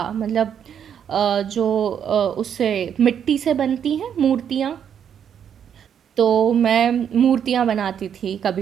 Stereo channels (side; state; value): left; quieter; 8.5 dB